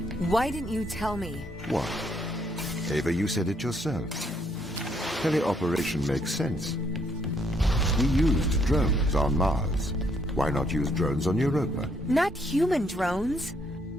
Why didn't you tell me? What? Ava, you said it yourself. Teleoperation makes sense. We used drones on Mars. Why not use drones on Europa? Not human drones.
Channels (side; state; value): both; normal; correlation 0.71